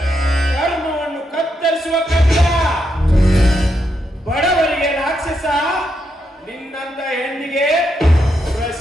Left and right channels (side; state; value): both; normal; correlation 0.81